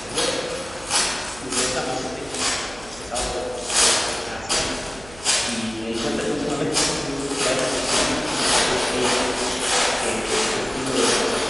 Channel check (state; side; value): noise; right; hum, 19 dB below the sound